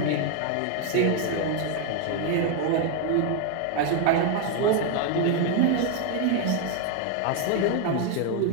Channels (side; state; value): both; different; correlation 0.00